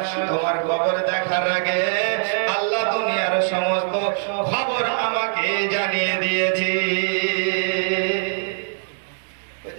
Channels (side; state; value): left; silent; digital silence